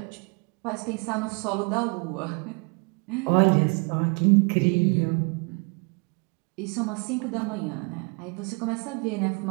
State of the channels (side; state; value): left; quieter; 33.7 dB